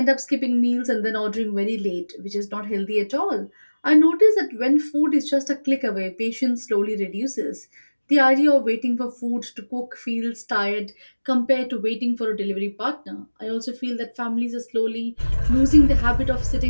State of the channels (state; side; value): inverted; both; correlation -1.00